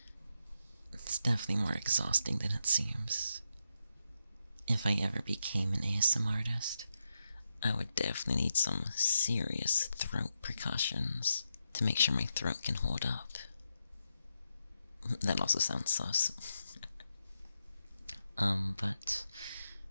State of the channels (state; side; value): inverted; both; correlation -0.85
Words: It's definitely more exhausting than it seems. If I ever became an ASMR artist, I would definitely need some serious throat precautions to make sure my throat can hold up. That also sounds sus. But